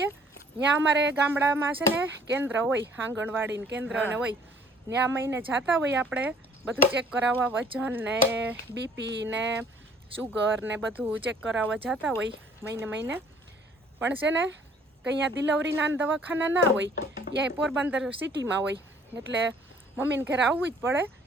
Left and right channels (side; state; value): both; normal; correlation 0.57